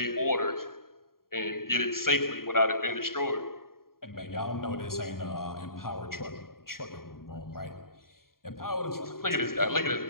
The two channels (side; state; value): right; late; 0.92 ms